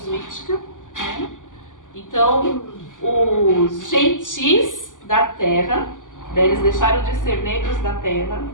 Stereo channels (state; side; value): late; right; 0.88 ms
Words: né? Então, os gentis da terra, eles deixaram de ser negros da terra,